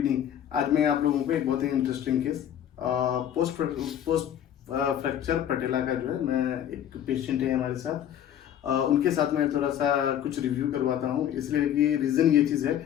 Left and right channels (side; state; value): right; quieter; 10.2 dB